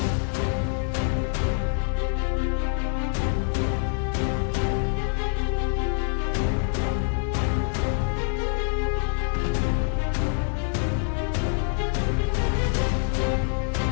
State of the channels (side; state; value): right; silent; 56 dB below the other